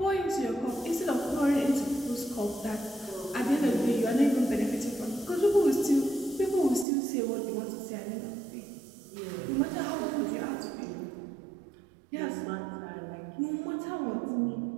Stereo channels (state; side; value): drops out; left; at 6.9 s